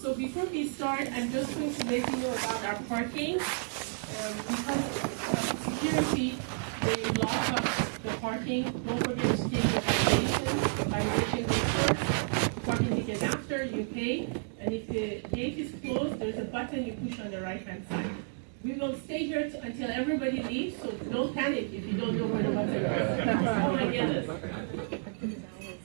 before we start, I'm just going to let you know about our parking. Because of security, they lock up the parking. Don't forget to take your violation goes first. Parking ticket after, you pay. And if the gate is closed, there's a button you push on the right-hand side. We will stay here until everybody leaves, so don't panic if you don't know where the button is. Oh my goodness.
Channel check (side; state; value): left; silent; digital silence